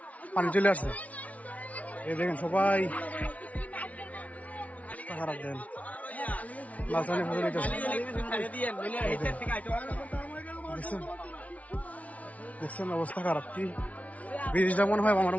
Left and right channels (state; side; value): late; right; 0.068 ms